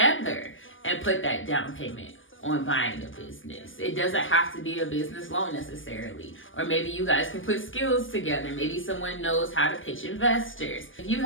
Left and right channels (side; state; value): right; late; 0.58 ms